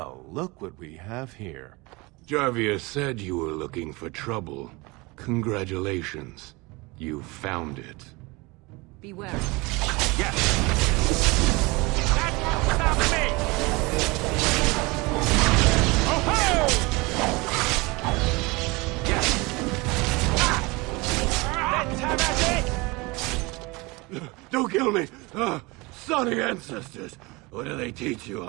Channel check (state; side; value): quieter; left; 24.7 dB